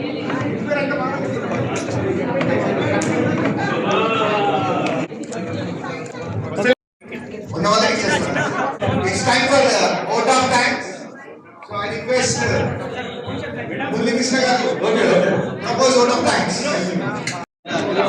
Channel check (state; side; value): identical; both; correlation 1.00